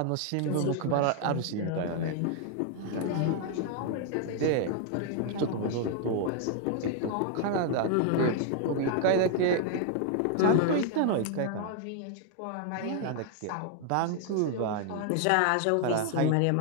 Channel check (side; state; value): both; different; correlation 0.00